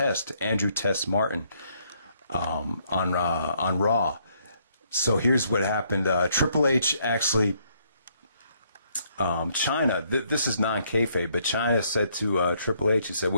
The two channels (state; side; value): inverted; both; correlation -0.70